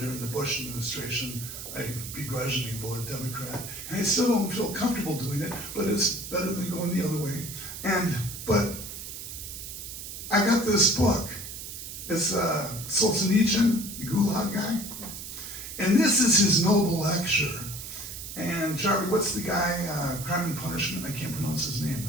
the Bush administration, I begrudgingly voted Democrat. And I still don't feel comfortable doing it, but it's better than going the other way. But I got this book. It's Solzhenitsyn, the Gulag guy. And this is his noble lecture. And Charlie, what's the guy, Crime and Punishment? I can't pronounce his name.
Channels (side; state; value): right; noise; hiss, 9 dB below the sound